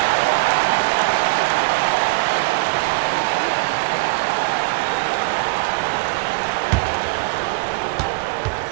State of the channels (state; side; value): quieter; left; 29.3 dB